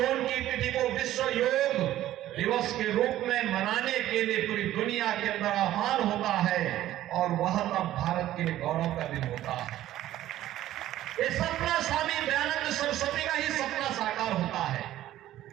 की तिथि को विश्व योग दिवस के रूप में मनाने के लिए पूरी दुनिया के अंदर आह्वान होता है, और वह तब भारत के लिए गौरव का दिन होता है। ये सपना स्वामी दयानंद सरस्वती का ही सपना साकार होता है।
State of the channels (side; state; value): left; quieter; 13.7 dB